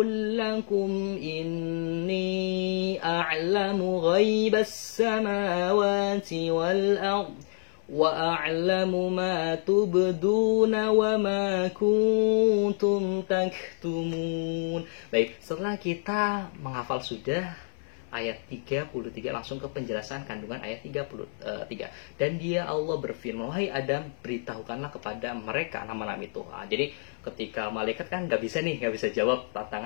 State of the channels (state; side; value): silent; right; 59 dB below the other